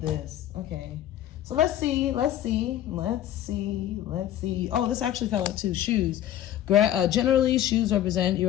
Okay. So let's see. Oh, this actually fell out too. Shoes. Generally, shoes represent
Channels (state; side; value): quieter; right; 12.0 dB